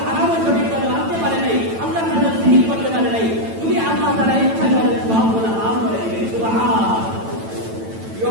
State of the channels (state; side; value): late; left; 9.0 ms